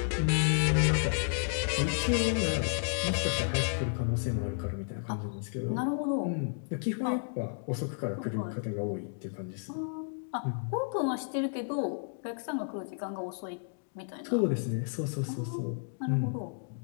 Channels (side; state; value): right; silent; digital silence